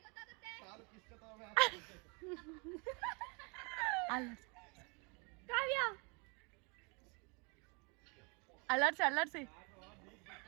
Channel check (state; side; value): quieter; left; 31.9 dB